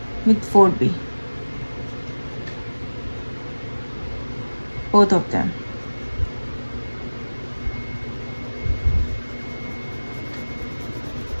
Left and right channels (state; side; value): inverted; both; correlation -1.00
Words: with 4B, both of them.